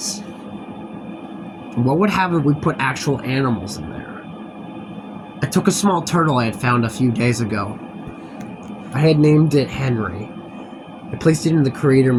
what would happen if we put actual animals in there? I took a small turtle I had found a few days ago. I had named it Henry. I placed it in the creator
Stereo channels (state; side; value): identical; both; correlation 1.00